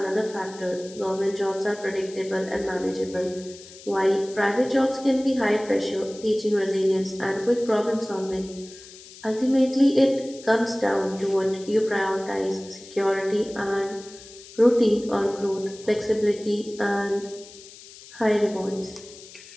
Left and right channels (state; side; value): noise; left; hiss, 19 dB below the sound